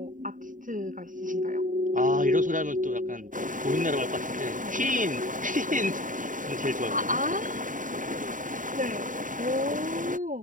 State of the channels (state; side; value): late; left; 0.38 ms